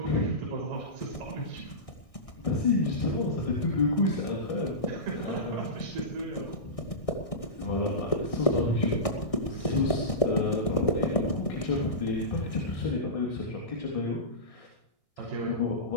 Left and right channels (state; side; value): late; right; 1.6 ms